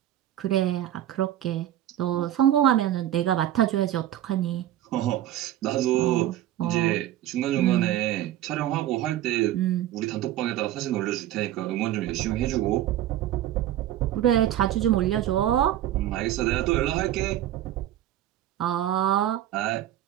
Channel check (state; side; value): quieter; left; 12.6 dB